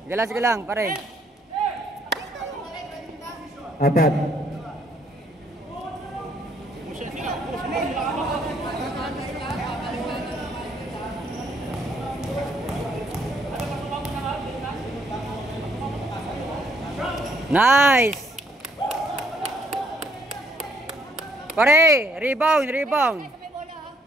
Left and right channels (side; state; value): both; normal; correlation 0.68